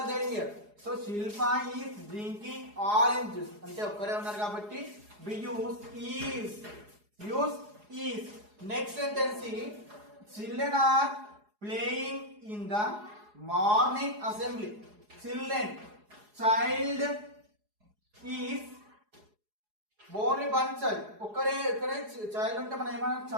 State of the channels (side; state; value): left; late; 4.8 ms